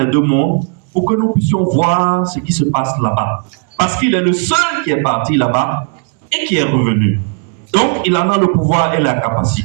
deux mondes pour que nous puissions voir ce qui se passe là-bas. Parce qu'il est le seul qui est parti là-bas et qui est revenu. Donc, il en a le pouvoir et la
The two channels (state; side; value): quieter; left; 40.0 dB